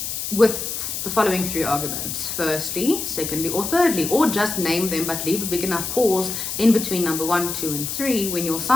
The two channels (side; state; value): left; noise; hiss, 4 dB below the sound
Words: with the following 3 arguments: firstly, secondly, or thirdly. Or just name them, but leave a big enough pause in between number 1, 2, and 3 when you're